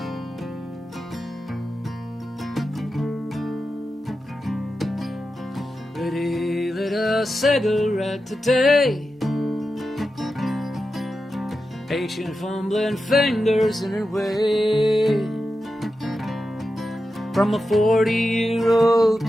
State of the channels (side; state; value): both; normal; correlation 0.91